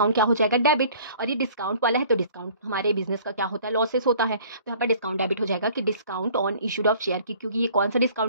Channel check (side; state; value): both; inverted; correlation -0.52